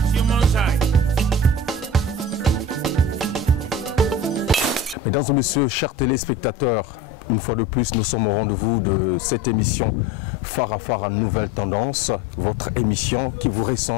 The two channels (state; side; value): normal; both; correlation 0.36